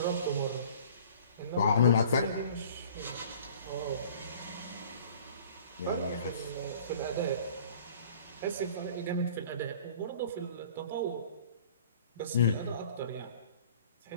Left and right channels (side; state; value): both; inverted; correlation -0.49